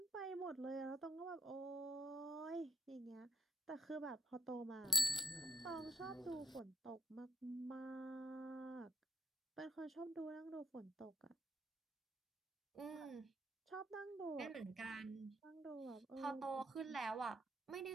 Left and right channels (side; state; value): both; normal; correlation 0.55